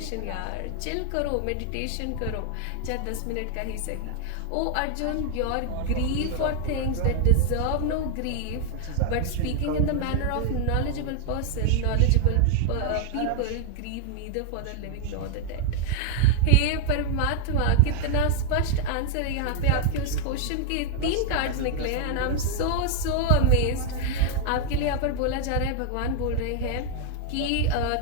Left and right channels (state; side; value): different; both; correlation 0.00